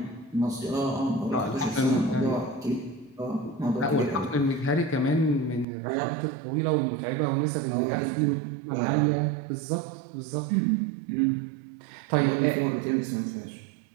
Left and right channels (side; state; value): left; drops out; at 5.7 s